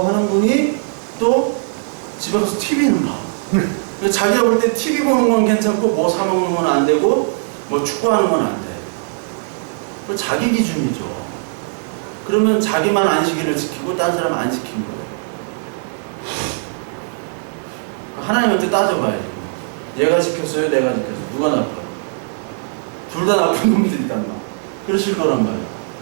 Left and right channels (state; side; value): silent; left; digital silence